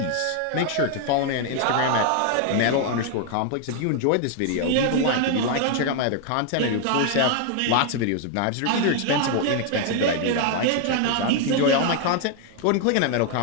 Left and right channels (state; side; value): different; both; correlation 0.00